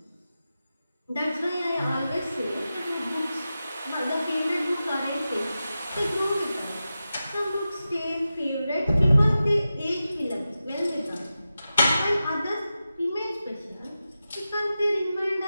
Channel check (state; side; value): inverted; both; correlation -0.93